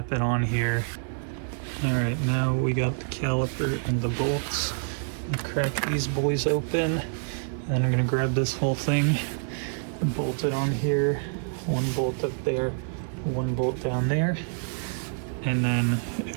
it on here. All right, now we got the caliper and the bolts. I'll crack these boys open, and then I'm gonna grab this whole thing and bolt it on here. One bolt up there, one bolt down there, and then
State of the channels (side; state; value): left; silent; digital silence